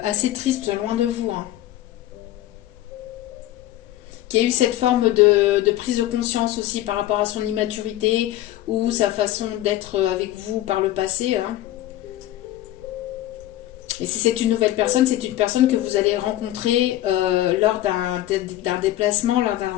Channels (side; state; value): right; quieter; 14.4 dB